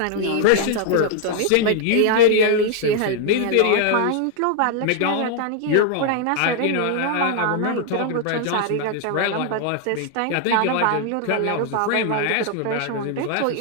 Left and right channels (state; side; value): different; both; correlation 0.00